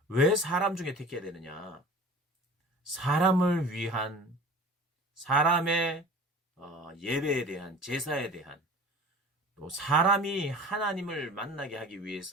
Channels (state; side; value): normal; both; correlation 0.41